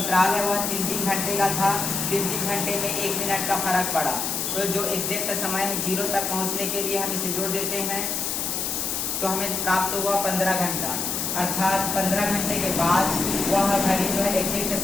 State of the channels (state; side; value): noise; left; hiss, 1 dB below the sound